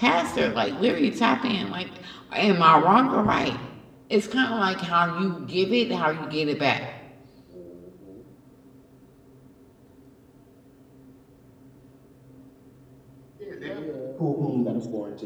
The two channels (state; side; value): identical; both; correlation 1.00